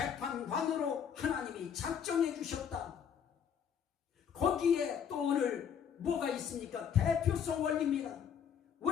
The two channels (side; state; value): right; quieter; 7.9 dB